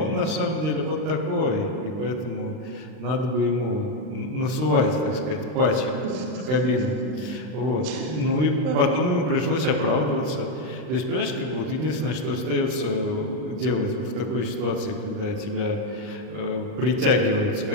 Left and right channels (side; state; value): left; late; 39 ms